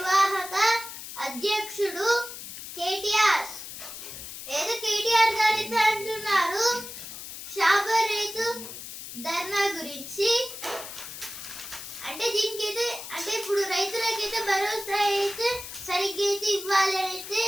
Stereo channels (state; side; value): noise; left; hiss, 11 dB below the sound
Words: అధ్యక్షుడు కేటీఆర్ గారితో అంటున్నారు షాబాద్ రైతు ధర్నా గురించి. అంటే దీనికైతే అంటే ఇప్పుడు రైతులకైతే భరోసా అయితే సరిగ్గా అయితే ఇవ్వాలి అయితే